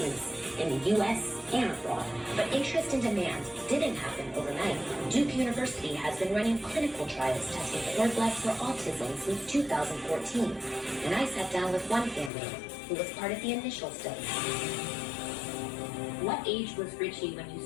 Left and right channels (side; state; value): right; drops out; at 12.3 s